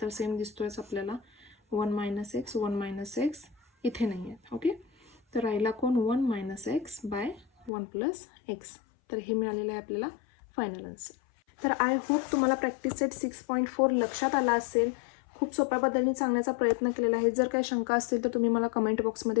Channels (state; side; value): drops out; right; at 7.7 s